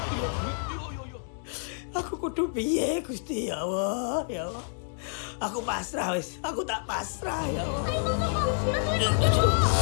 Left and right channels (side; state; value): right; silent; digital silence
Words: Ayo, Bang. Aku kudu piye Gusti, ya Allah, ya Allah. Aku pasrah wis, aku tak pasrah ya Allah. Ayo, Bang Soko.